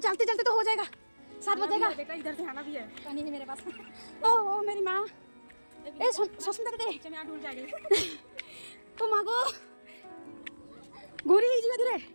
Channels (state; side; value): inverted; both; correlation -1.00